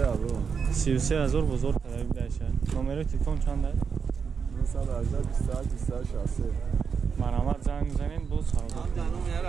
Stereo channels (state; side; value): quieter; left; 6.0 dB